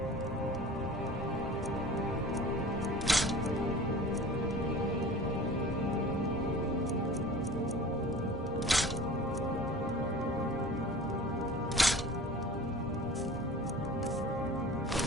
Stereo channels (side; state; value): both; normal; correlation 0.41